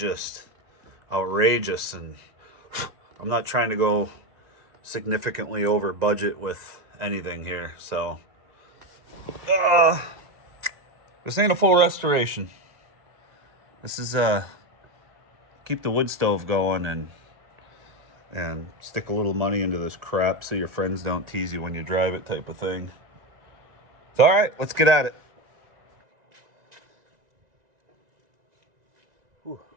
outrageous, and I'm not trying to go significantly over budget with anything here. So this ain't a full restoration. This is keep the wood stove going and stick a little money into this crap so your friends don't tease you when you drive it type of thing. So all right, let's get at it.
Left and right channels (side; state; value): left; late; 1.9 ms